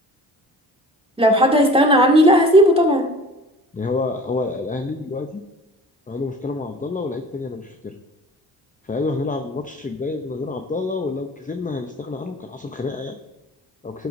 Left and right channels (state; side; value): normal; both; correlation 0.44